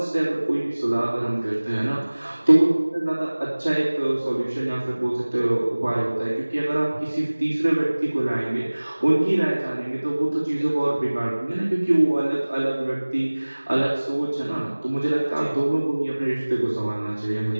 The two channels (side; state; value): both; inverted; correlation -1.00